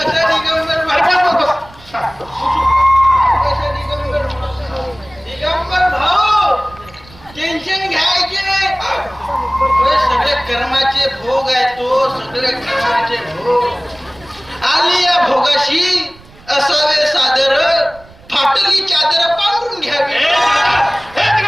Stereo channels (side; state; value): right; noise; rumble, 24 dB below the sound